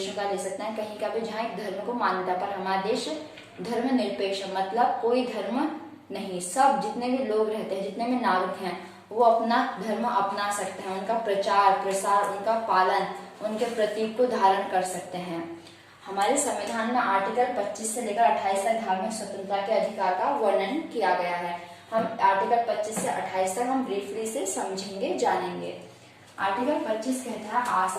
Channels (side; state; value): both; identical; correlation 1.00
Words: का ले सकते हैं, कहीं का भी जहाँ एक धर्म को मान्यता, पर हमारा देश धर्मनिरपेक्ष मतलब कोई धर्म नहीं, सब जितने भी लोग रहते हैं, जितने भी नागरिक हैं, वो अपना धर्म अपना सकते हैं, उनका प्रचार प्रसार, उनका पालन, उनके प्रतीक को धारण कर सकते हैं। हमारे संविधान में आर्टिकल 25 से लेकर 28 तक धार्मिक स्वतंत्रता के अधिकार का वर्णन किया गया है। हम आर्टिकल 25 से 28 तक हम ब्रीफली से समझेंगे, जानेंगे। आर्टिकल 25 कहता है